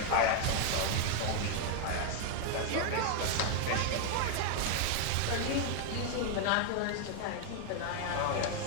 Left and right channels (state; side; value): different; both; correlation 0.00